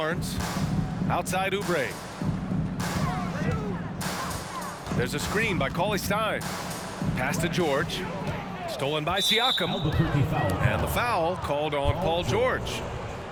Outside Oubre. There's a screen by Cauley Stein. Pass to George. Stolen by Siakam. And the foul called on Paul George.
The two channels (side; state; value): both; identical; correlation 1.00